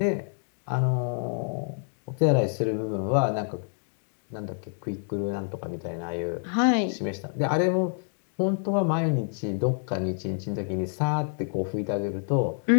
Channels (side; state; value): right; silent; digital silence